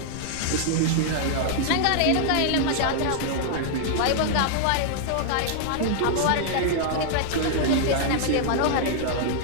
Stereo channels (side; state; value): both; different; correlation -0.01